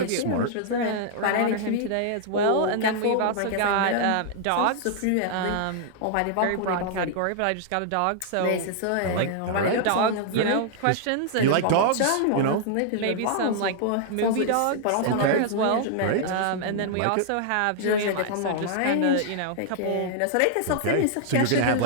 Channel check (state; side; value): different; both; correlation -0.01